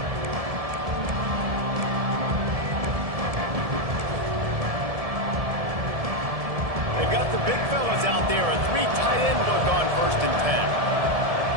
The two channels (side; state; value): left; late; 1.7 ms